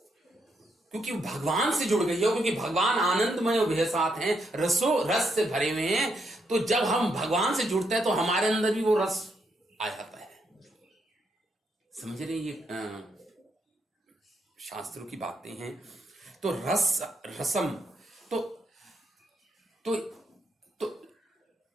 क्योंकि भगवान से जुड़ गई हो, क्योंकि भगवान आनंदमय और साथ हैं, रस से भरे हुए हैं। तो जब हम भगवान से जुड़ते हैं तो हमारे अंदर भी वो रस आ जाता है। समझ रहे? ये शास्त्रों की बातें हैं। तो रसम तो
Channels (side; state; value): both; normal; correlation 0.78